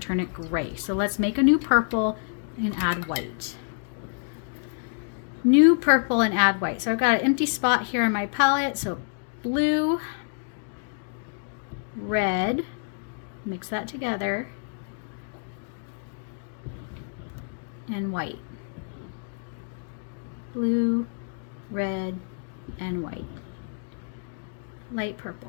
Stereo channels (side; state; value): right; silent; digital silence